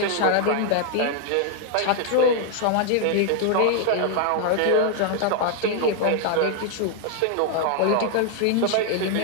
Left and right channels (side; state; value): both; different; correlation 0.00